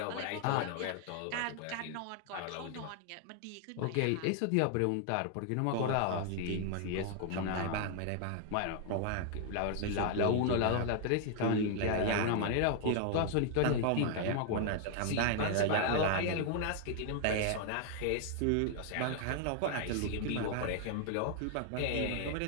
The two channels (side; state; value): both; different; correlation 0.00